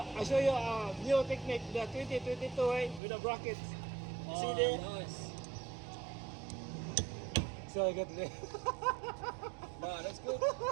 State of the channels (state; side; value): drops out; left; at 3.0 s